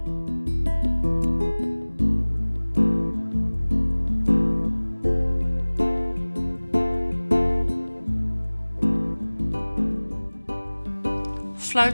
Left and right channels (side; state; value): both; inverted; correlation -1.00